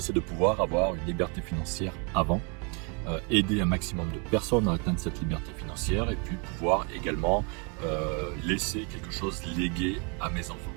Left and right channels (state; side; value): quieter; left; 33.3 dB